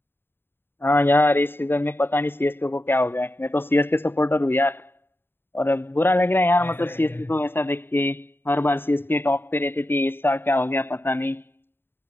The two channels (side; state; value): right; late; 0.11 ms